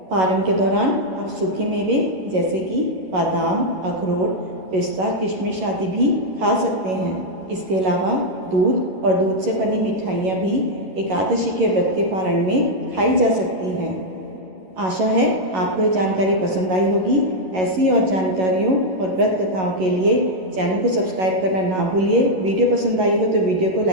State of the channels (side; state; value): left; late; 11 ms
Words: पारण के दौरान आप सूखे मेवे जैसे कि बादाम, अखरोट, पिस्ता, किशमिश आदि भी खा सकते हैं। इसके अलावा दूध और दूध से बनी मिठाइयाँ भी एकादशी के व्रत के पारण में खाई जा सकती हैं। आशा है आपको ये जानकारी पसंद आई होगी। ऐसी और जानकारियों और व्रत कथाओं के लिए चैनल को सब्सक्राइब करना ना भूलिए। वीडियो पसंद आई हो तो वीडियो को